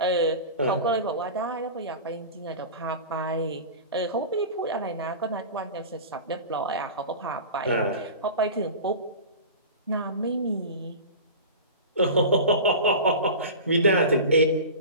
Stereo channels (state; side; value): inverted; both; correlation -0.32